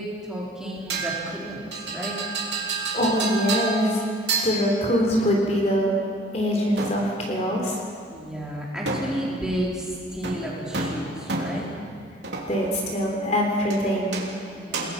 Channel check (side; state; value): both; normal; correlation 0.49